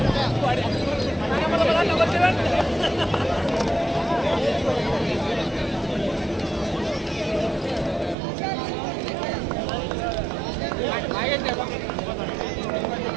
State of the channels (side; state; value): left; drops out; at 8.2 s